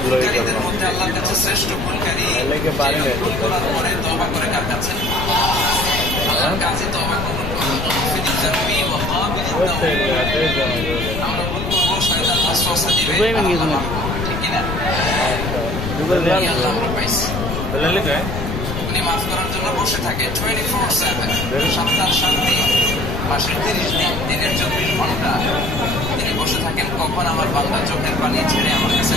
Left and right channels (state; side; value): noise; left; rumble, 4 dB below the sound